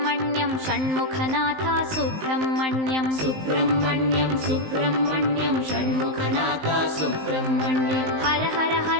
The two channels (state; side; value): late; left; 19 ms